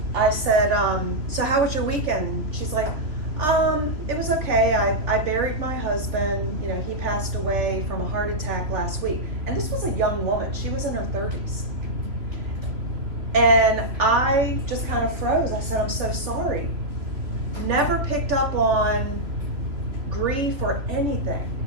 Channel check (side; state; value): left; late; 3.4 ms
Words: I said, "So how was your weekend?" She's like, "It was okay. I buried my husband. You know, he passed away from a heart attack last week." And this was a young woman. She was in her 30s. And I just kind of froze. I said, "I'm so sorry." Never picked up on grief or anything.